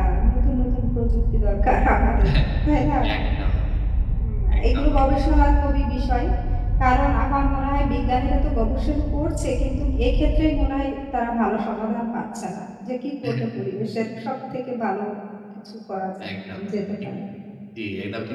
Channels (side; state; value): both; identical; correlation 1.00